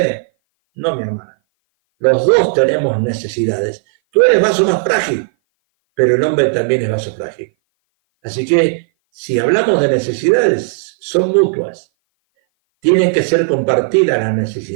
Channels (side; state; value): left; silent; 57 dB below the other